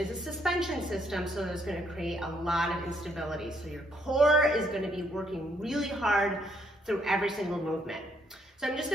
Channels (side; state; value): both; normal; correlation 0.71